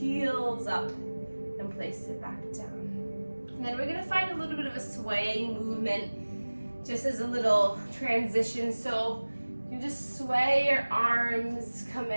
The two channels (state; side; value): inverted; both; correlation -1.00